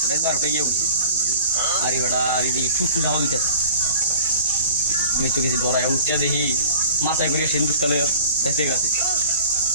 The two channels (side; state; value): both; inverted; correlation -0.44